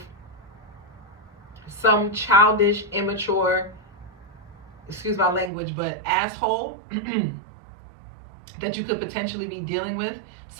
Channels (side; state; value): left; drops out; at 5.5 s